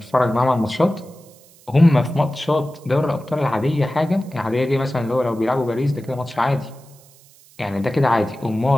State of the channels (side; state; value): right; noise; hiss, 27 dB below the sound